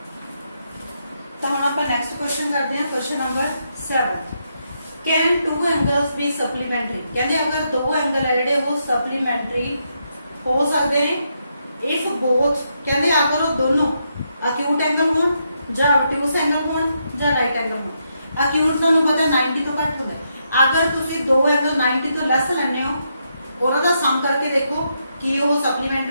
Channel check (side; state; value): both; inverted; correlation -0.80